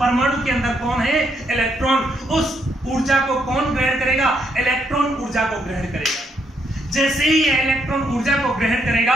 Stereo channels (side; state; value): both; normal; correlation 0.75